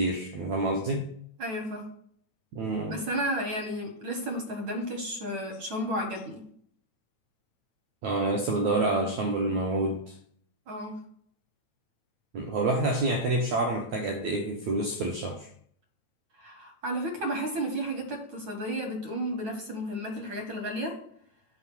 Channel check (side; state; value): left; late; 9.1 ms